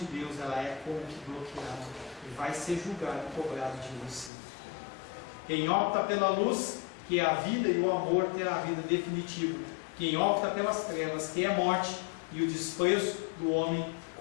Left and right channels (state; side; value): drops out; right; at 4.3 s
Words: Deus, ela é como que bloqueada e vai ser julgado e cobrado de você. Quem opta pela luz, que é a vida e o amor, terá a vida definitiva. Quem opta pelas trevas, que é a morte e o desprezo do homem,